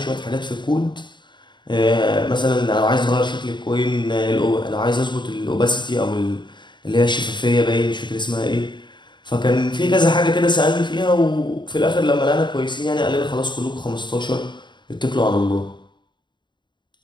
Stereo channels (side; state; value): right; late; 0.22 ms